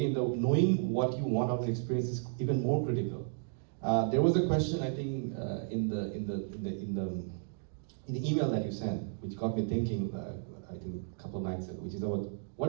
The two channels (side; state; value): left; silent; digital silence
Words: knowing what you want out of the experience is even more critical. There was a question, I think, in the email that you sent, which got me thinking, I think a couple of nights ago, which is about